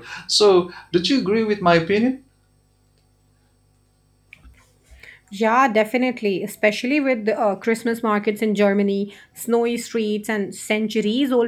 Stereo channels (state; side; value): identical; both; correlation 1.00